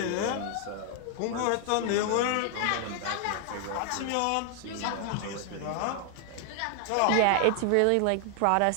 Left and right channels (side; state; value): both; different; correlation 0.00